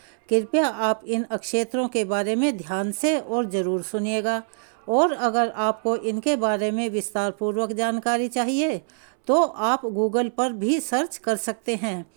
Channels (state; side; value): silent; left; 62 dB below the other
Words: कृपया आप इन अक्षेत्रों के बारे में ध्यान से और ज़रूर सुनिएगा। और अगर आपको इनके बारे में विस्तार पूर्वक जानकारी चाहिए तो आप गूगल पर भी सर्च कर सकते हैं।